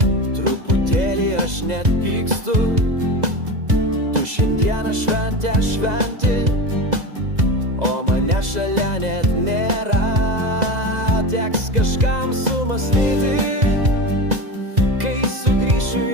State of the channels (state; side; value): late; left; 2.0 ms